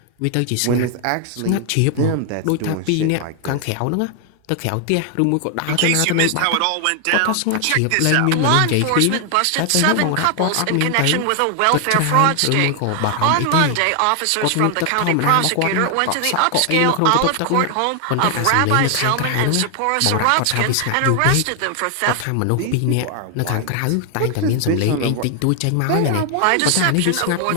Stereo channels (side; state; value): both; different; correlation 0.00